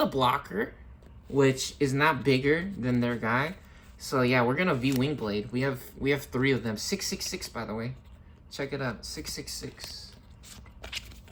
blocker, which is not bigger than their guy. So yeah, we're going to V-Wingblade. We have 3 of them. 666, by the way. Check it out. 666.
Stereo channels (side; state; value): both; identical; correlation 1.00